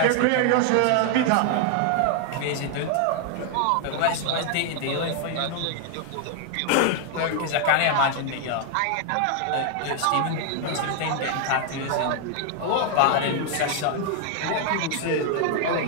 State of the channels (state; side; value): different; both; correlation 0.00